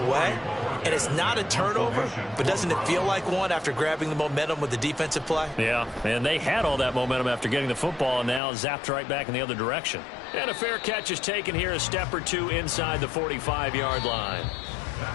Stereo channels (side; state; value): right; drops out; at 8.4 s